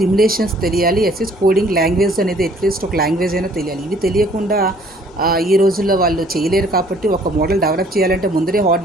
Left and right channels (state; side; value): normal; both; correlation 0.58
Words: తెలియాలి, కోడింగ్ లాంగ్వేజ్ అనేది అట్లీస్ట్ ఒక లాంగ్వేజ్ అయినా తెలియాలి. ఇవి తెలియకుండా ఈ రోజుల్లో వాళ్ళు చేయలేరు. కాబట్టి ఒక మోడల్ డెవలప్ చేయాలంటే ముందరే